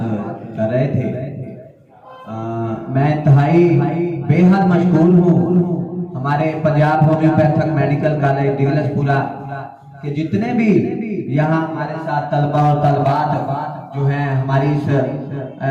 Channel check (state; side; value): identical; both; correlation 1.00